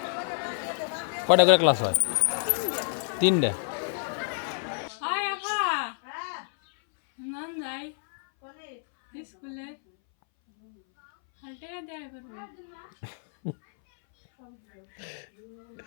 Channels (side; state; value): right; silent; 59 dB below the other